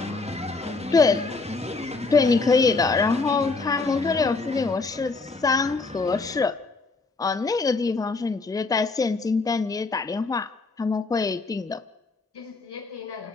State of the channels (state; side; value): quieter; right; 3.9 dB